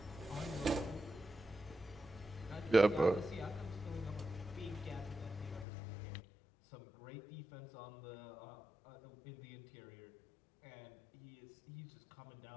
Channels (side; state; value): right; drops out; at 5.7 s